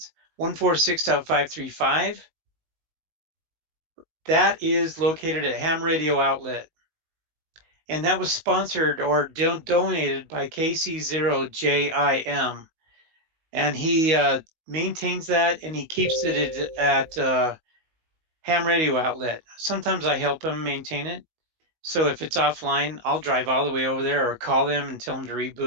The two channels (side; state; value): left; late; 19 ms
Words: 146.535. That is located at Ham Radio Outlet. And that was sponsored or donated by KC0JIM. And he maintains that and he keeps it at Ham Radio Outlet. Sometimes I help him maintain it. So if it's offline, I'll drive all the way over there or call them and tell them to